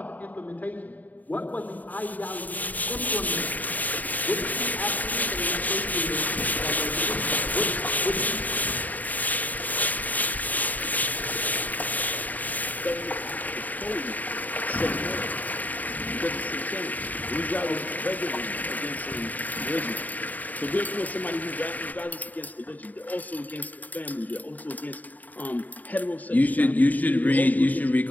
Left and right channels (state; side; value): late; right; 0.079 ms